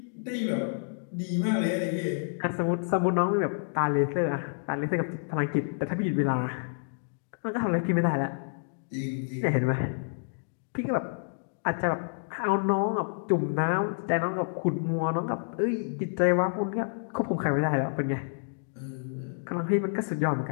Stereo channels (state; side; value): silent; right; digital silence